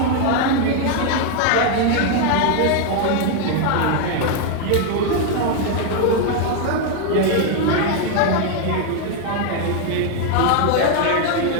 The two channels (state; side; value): different; both; correlation 0.01